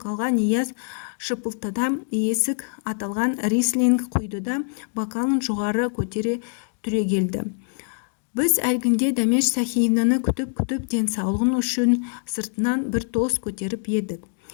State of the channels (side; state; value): right; silent; 55 dB below the other